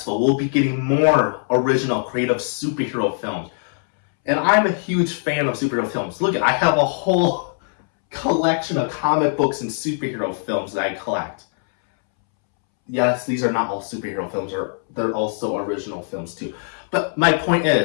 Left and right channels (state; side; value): silent; right; 65 dB below the other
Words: we'll be getting more original, creative superhero films. And I'm a huge fan of superhero films. Look, I have a whole collection of comic books and superhero films that I collect. Yes, these are not all superhero films, they're also original films too. But my point